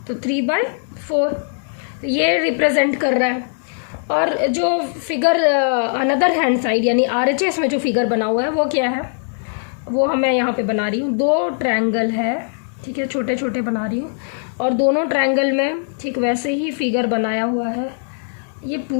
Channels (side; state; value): right; silent; digital silence